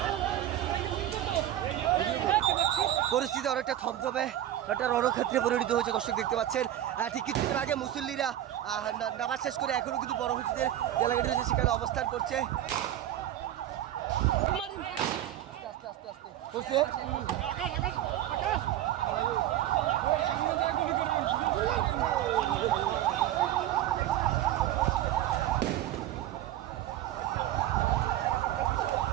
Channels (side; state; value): left; quieter; 12.6 dB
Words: পরিস্থিতি অনেকটা থমথমে একটা রণক্ষেত্রে পরিণত হয়েছে দর্শক দেখতে পাচ্ছেন। ঠিক কিছুক্ষণ আগে মুসল্লিরা নামাজ শেষ করে এখনো কিন্তু বড় মসজিদের যে এলাকাটি রয়েছে সেখানে অবস্থান করছে। আস্তে